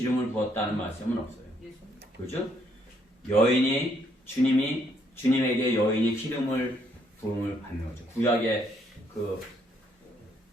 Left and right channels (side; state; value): both; normal; correlation 0.70